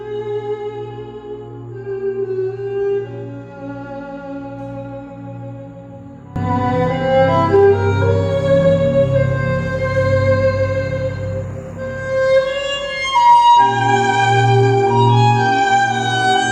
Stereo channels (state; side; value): identical; both; correlation 1.00